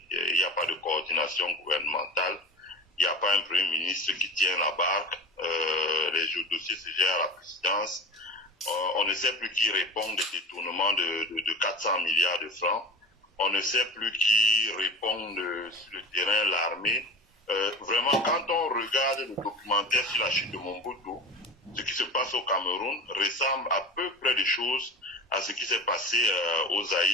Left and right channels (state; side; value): normal; both; correlation 0.31